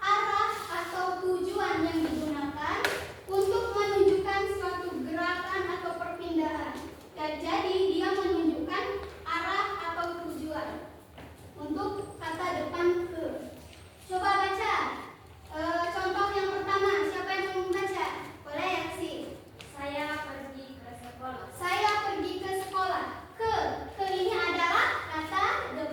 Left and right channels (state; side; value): identical; both; correlation 1.00